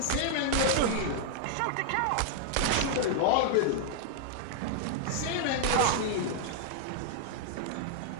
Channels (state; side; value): different; both; correlation -0.01